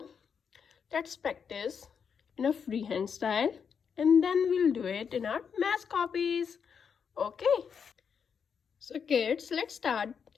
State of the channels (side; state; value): right; quieter; 6.7 dB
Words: let's practice in a freehand style and then we'll do it in our math copies. Okay. So kids, let's start